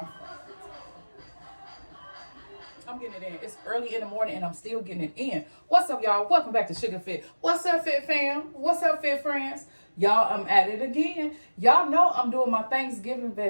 I'm getting it in. It's early in the morning and I'm still getting it in. What's up, y'all? Welcome back to Sugar Fit. What's up, Fit fam? What's up, Fit friends? Y'all, I'm at it again. Y'all know I'm doing my Thanksgiving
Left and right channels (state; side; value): inverted; both; correlation -1.00